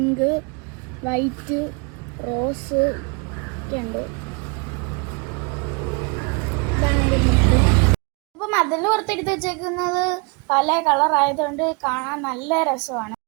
വൈറ്റ്, റോസ് ഒക്കെ ഉണ്ട്. അപ്പൊ മതിലിന് പുറത്തെടുത്ത് വെച്ചേക്കുന്നത് പല കളർ ആയതുകൊണ്ട് കാണാൻ നല്ല രസമാണ്.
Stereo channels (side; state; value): left; quieter; 31.6 dB